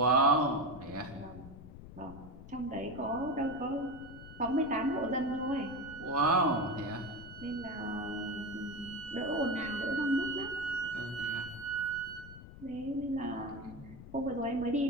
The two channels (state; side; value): noise; left; rumble, 15 dB below the sound